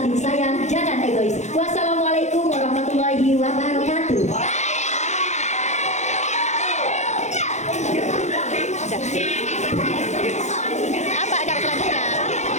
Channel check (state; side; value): late; right; 0.33 ms